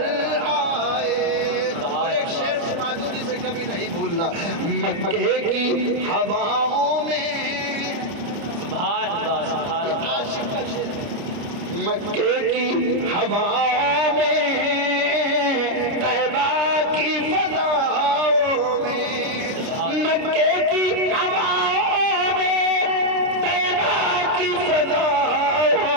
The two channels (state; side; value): late; left; 30 ms